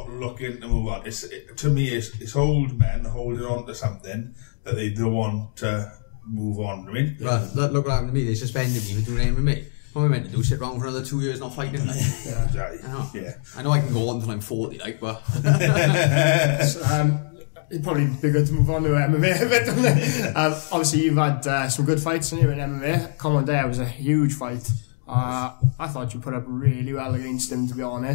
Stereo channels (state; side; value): silent; right; digital silence